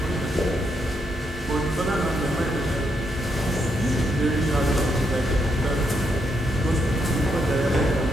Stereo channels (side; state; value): both; normal; correlation 0.78